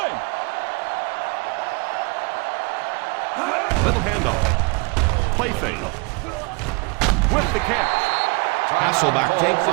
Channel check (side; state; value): left; quieter; 29.5 dB